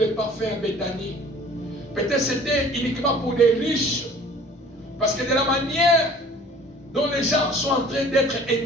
parfums à Béthanie. Peut-être c'était uniquement pour les riches, parce que de la manière dont les gens sont en train d'être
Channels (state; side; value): normal; both; correlation 0.50